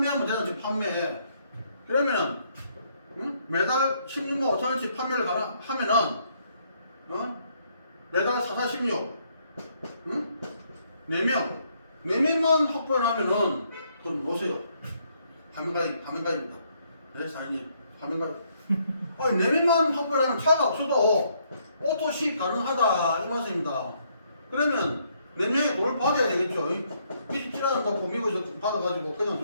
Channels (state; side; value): inverted; both; correlation -0.71